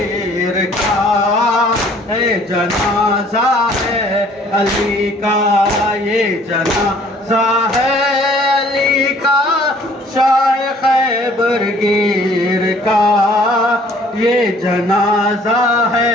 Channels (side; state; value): both; normal; correlation 0.56